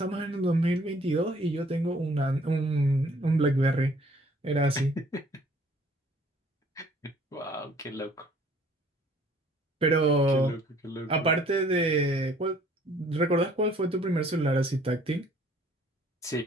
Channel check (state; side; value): normal; both; correlation 0.58